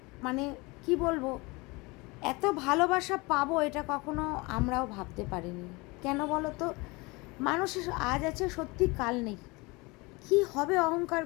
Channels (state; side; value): quieter; right; 25.2 dB